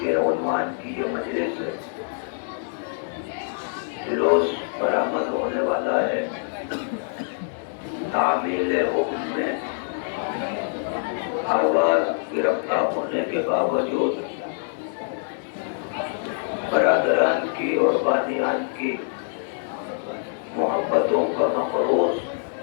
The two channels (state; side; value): silent; right; digital silence